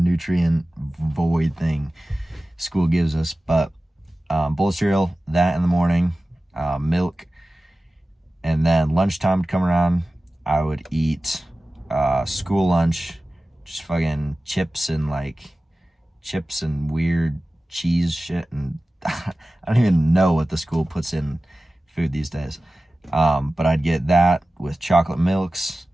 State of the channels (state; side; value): normal; both; correlation 0.96